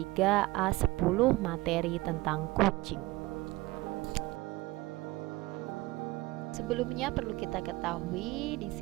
A10 materi tentang kucing. Sebelumnya perlu kita ketahui di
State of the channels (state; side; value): quieter; left; 20.4 dB